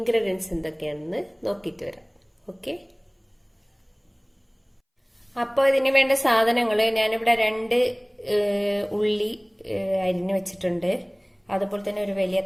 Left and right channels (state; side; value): identical; both; correlation 1.00